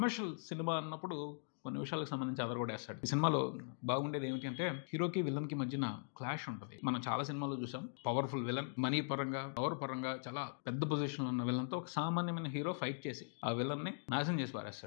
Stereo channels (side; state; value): right; silent; digital silence